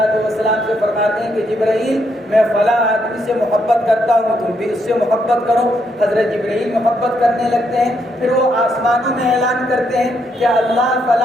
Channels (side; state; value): both; normal; correlation 0.76